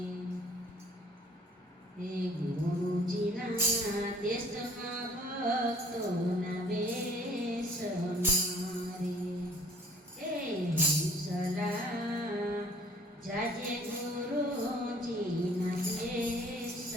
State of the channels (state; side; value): normal; both; correlation 0.54